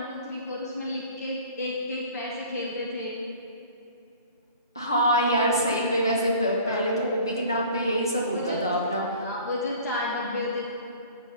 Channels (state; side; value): inverted; both; correlation -0.46